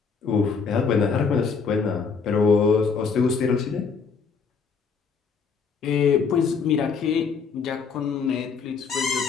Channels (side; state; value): right; quieter; 5.5 dB